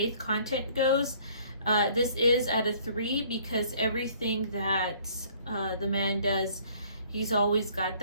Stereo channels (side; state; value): both; inverted; correlation -0.57